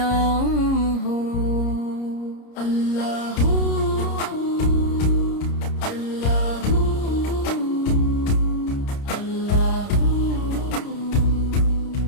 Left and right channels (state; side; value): late; right; 30 ms